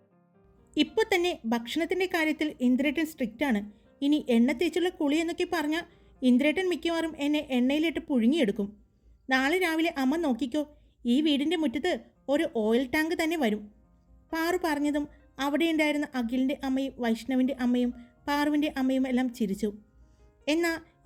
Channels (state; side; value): identical; both; correlation 1.00